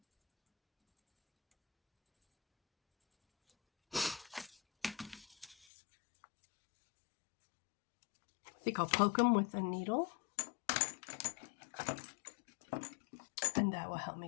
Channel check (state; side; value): drops out; right; at 5.6 s